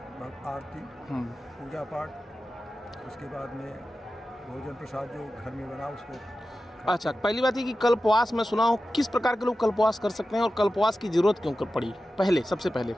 आरती, पूजा पाठ, उसके बाद में भोजन प्रसाद जो घर में बना उसको। अच्छा, पहली बात ये कि कल्पवास मैं सुना हूँ, किस प्रकार के लोग कल्पवास कर सकते हैं और कल्पवास की जरूरत क्यों पड़ी सबसे पहले?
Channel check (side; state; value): both; normal; correlation 0.93